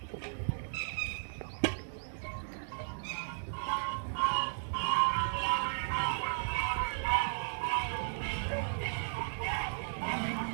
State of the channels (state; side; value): silent; left; digital silence